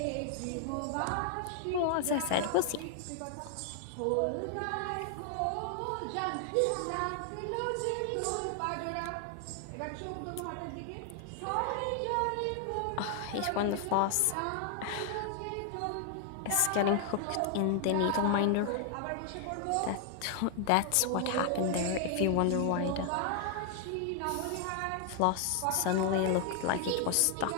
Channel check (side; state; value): both; different; correlation 0.00